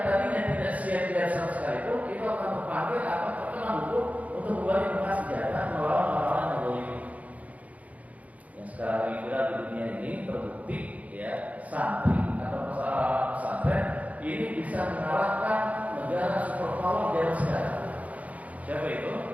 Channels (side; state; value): left; late; 0.070 ms